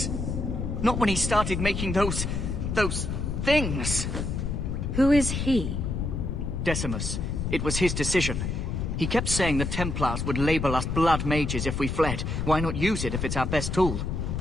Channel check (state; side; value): noise; left; rumble, 2 dB below the sound